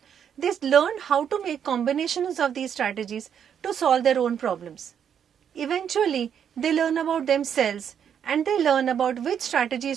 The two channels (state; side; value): quieter; left; 8.4 dB